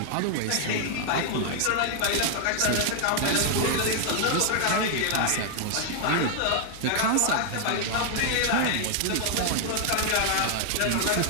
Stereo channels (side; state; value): both; different; correlation 0.00